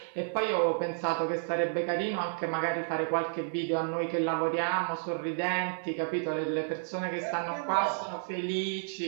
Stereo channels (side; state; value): left; silent; 57 dB below the other